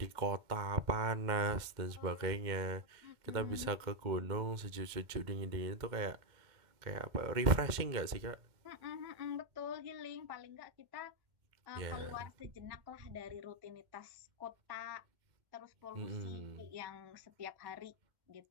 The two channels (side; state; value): left; late; 2.1 ms